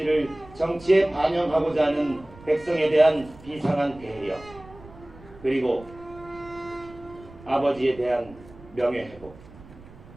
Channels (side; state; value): right; noise; rumble, 21 dB below the sound